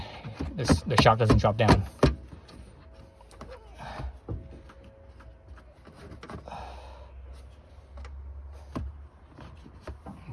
the shock doesn't drop down.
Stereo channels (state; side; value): identical; both; correlation 1.00